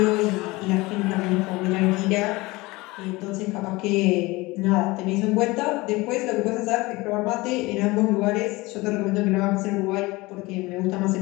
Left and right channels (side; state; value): right; quieter; 22.0 dB